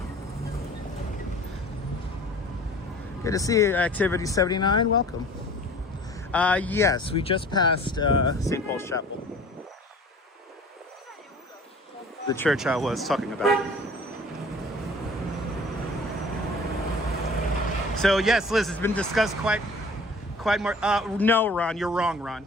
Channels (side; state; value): both; normal; correlation 0.46